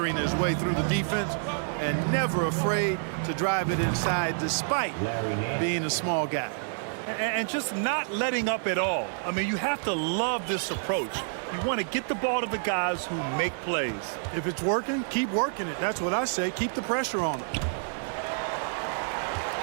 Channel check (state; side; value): silent; left; 59 dB below the other